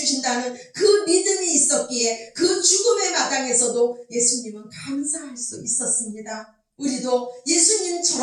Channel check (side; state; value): both; identical; correlation 1.00